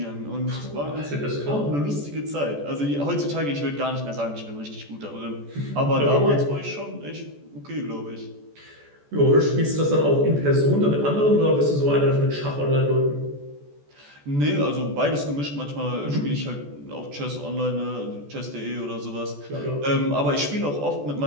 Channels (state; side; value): late; left; 14 ms